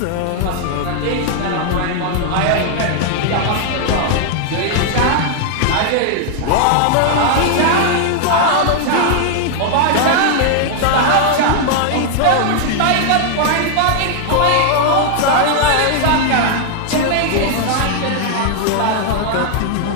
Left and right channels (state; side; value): different; both; correlation 0.00